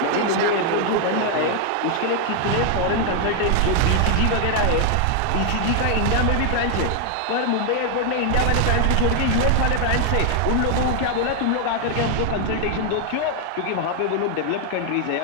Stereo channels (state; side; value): different; both; correlation 0.00